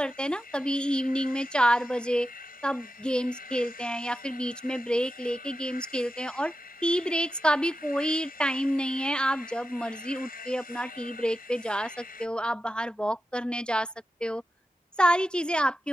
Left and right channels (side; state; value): both; normal; correlation 0.91